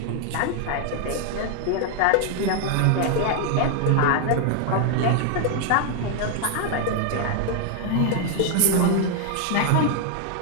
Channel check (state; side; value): different; both; correlation 0.00